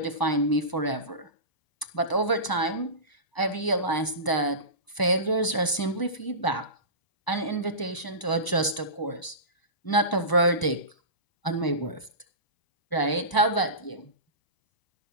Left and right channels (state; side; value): late; right; 1.0 ms